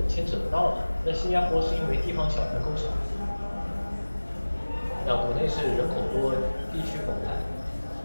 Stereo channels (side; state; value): both; inverted; correlation -1.00